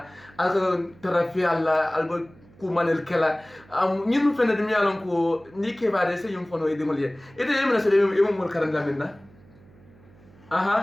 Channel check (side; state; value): right; noise; hum, 26 dB below the sound